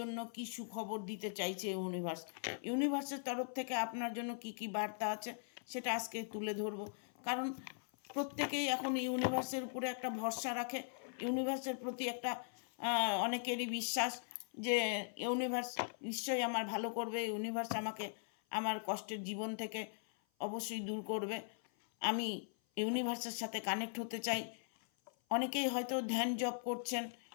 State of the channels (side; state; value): right; silent; 51 dB below the other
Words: কি সুখবর দিতে চাইছে ইউনিভার্স, ইউনিভার্সের তরফ থেকে আপনার জন্য কি কি বার্তা আছে সেটা আজকে তুলে ধরবো। কারণ প্রত্যেকেই এখন ইউনিভার্সের উপরে একটা ভরসা রাখে, ইউনিভার্সের প্রতি একটা অনেকেরই বিশ্বাস যে ইউনিভার্স নিশ্চয়ই আমার ভালো করবে, ইউনিভার্স আমাকে আমার কষ্টের জীবন থেকে অবশ্যই দূর করবে। আমি ইউনিভার্সের সাথে কানেক্ট হতে চাই। অনেকেই হয়তো ধ্যান জপ করছেন,